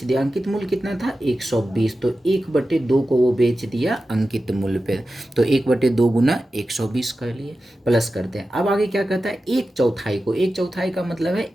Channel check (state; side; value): normal; both; correlation 0.93